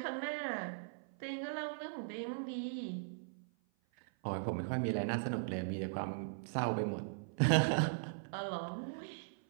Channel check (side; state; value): left; silent; 52 dB below the other